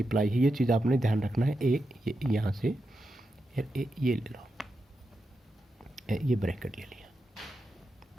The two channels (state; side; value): normal; both; correlation 0.88